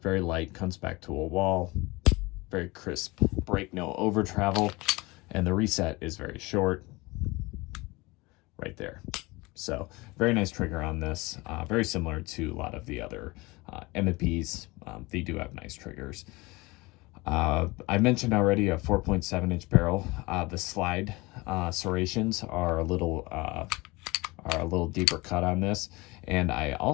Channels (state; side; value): quieter; right; 23.3 dB